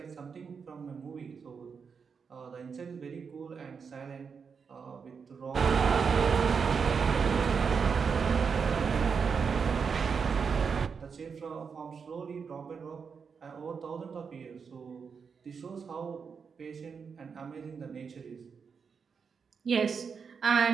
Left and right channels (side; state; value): left; quieter; 5.9 dB